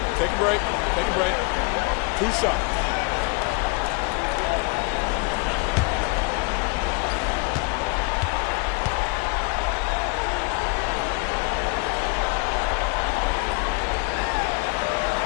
Take a break. Take a break. 2 shots.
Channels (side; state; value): right; quieter; 30.5 dB